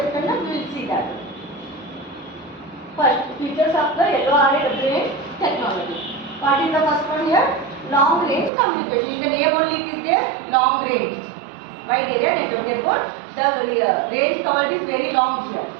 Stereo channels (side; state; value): left; drops out; at 8.5 s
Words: and we will see that. First, features of the LORA WAN technology. What is the first one here? Long range communication. In the name only it is there, long range. Wide area network. Therefore, the range covered is very long here.